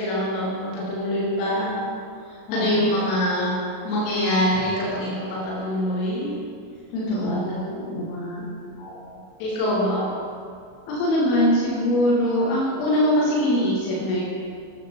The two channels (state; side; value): late; right; 37 ms